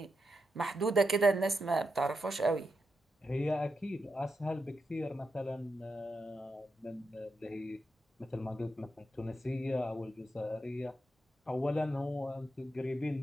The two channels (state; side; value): normal; both; correlation 0.86